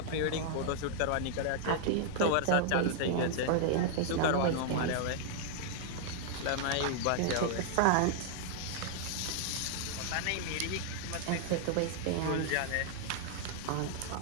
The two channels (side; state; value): both; different; correlation 0.00